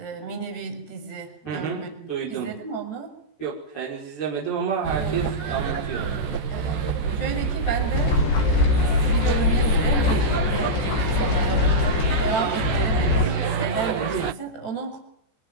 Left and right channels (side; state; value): right; late; 14 ms